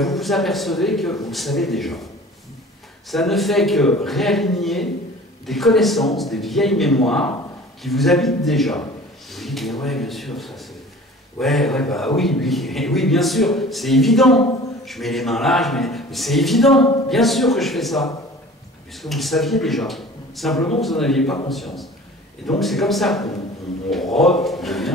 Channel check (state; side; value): normal; both; correlation 0.44